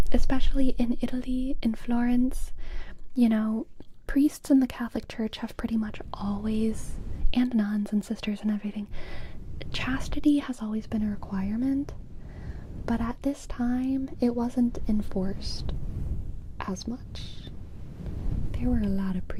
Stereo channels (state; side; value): identical; both; correlation 1.00